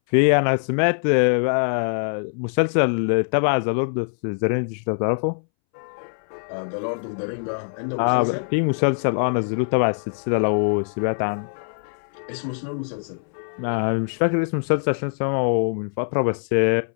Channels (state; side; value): silent; right; 63 dB below the other